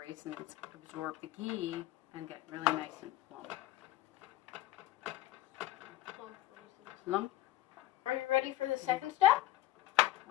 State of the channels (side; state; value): right; quieter; 15.2 dB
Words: absorb the ghee and get really nice and plump. Plump raisins. Plump? Are you ready for the second step?